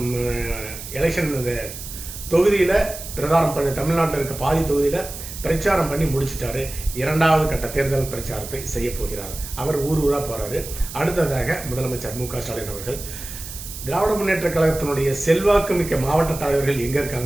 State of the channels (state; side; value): noise; right; hiss, 11 dB below the sound